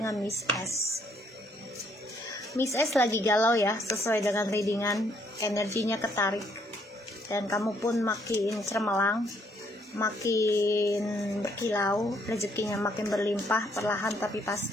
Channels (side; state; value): both; normal; correlation 0.69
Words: Miss S. Miss S lagi galau ya, sesuai dengan readingan, energinya ketarik, dan kamu pun makin cermelang, makin berkilau, rezekinya makin berlimpah, perlahan tapi